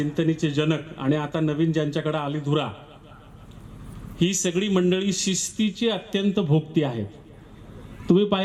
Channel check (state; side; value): identical; both; correlation 1.00